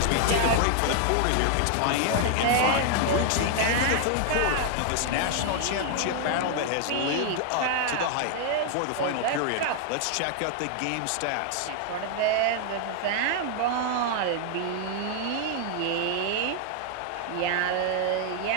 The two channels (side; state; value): both; different; correlation 0.00